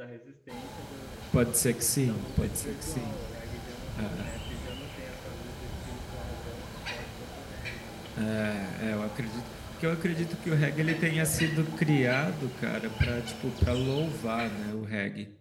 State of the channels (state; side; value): identical; both; correlation 1.00